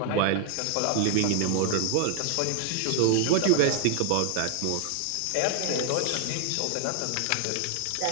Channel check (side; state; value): both; different; correlation 0.00